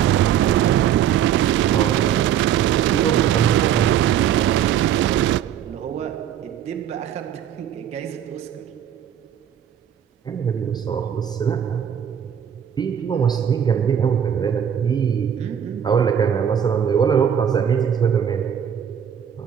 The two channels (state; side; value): quieter; left; 9.3 dB